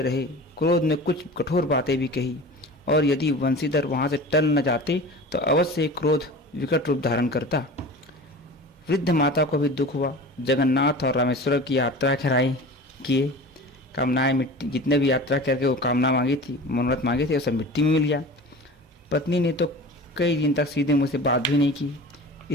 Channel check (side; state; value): both; normal; correlation 0.36